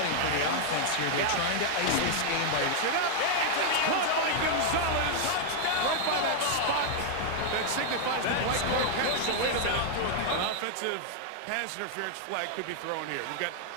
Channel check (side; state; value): both; different; correlation 0.00